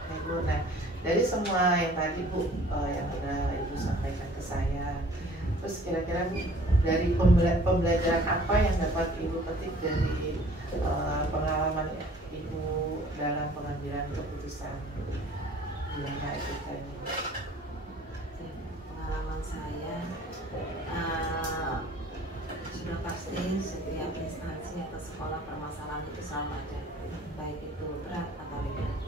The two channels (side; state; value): both; normal; correlation 0.52